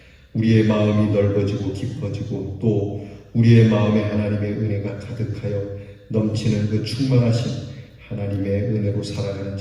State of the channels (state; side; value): identical; both; correlation 1.00